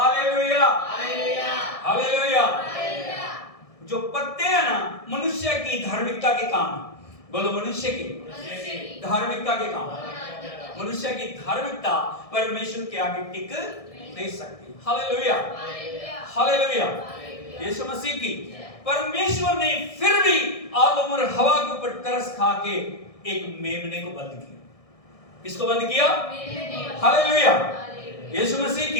hallelujah, hallelujah. जो पत्ते हैं ना, मनुष्य की धार्मिकता के काम। बोलो मनुष्य की धार्मिकता के काम। मनुष्य की धार्मिकता परमेश्वर के आगे टिक नहीं सकती। Hallelujah, hallelujah. यीशु मसीह की परमेश्वर ने फिर भी आदम और हवा के ऊपर तरस खा के एक मेमने को बंद किया। किसको बंद किया? हालेलुया, यीशु मसीह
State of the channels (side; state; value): right; late; 1.6 ms